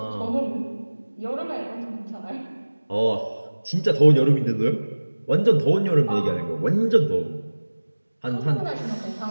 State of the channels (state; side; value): inverted; both; correlation -1.00